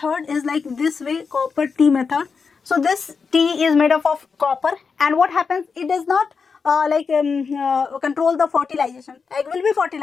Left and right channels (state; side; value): quieter; right; 5.4 dB